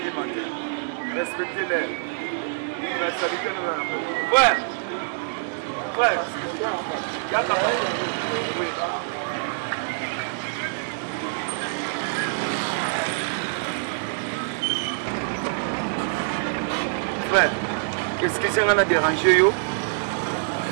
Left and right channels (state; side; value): silent; left; digital silence